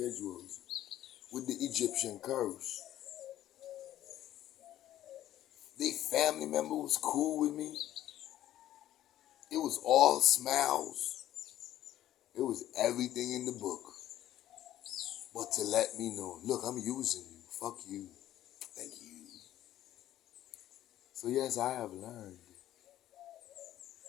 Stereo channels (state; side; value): quieter; right; 13.0 dB